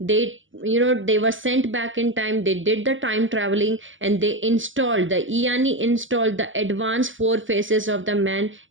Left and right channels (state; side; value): late; left; 0.57 ms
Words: were sent back in time. They did the time traveling, and they installed, the Eieyani installed the advanced four faces of the man